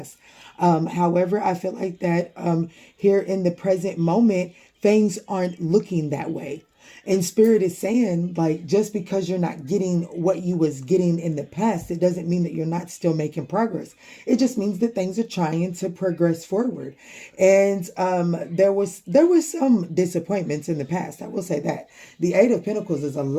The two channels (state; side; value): identical; both; correlation 1.00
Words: However, I feel like that here in the present moment, things aren't looking that way. And Spirit is saying, like, just because you're not getting what you was getting in the past, it doesn't mean that you're not still making progress. It just means that things are trying to progress forward. And there was some disappointments in the past. I will say that. The Eight of Pentacles is a